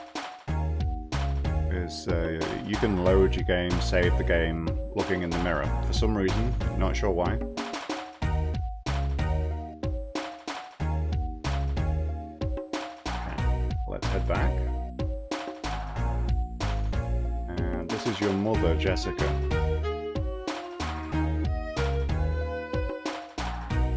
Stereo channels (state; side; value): identical; both; correlation 1.00